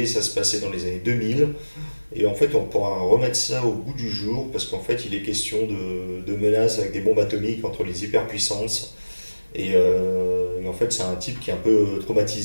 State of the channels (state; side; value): inverted; both; correlation -1.00